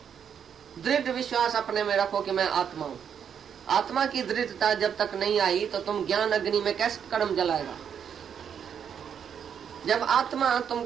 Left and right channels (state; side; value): quieter; left; 7.9 dB